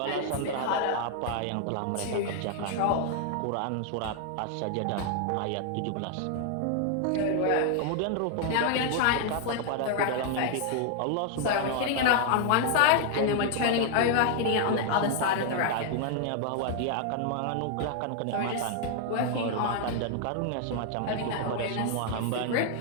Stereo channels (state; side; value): different; both; correlation 0.00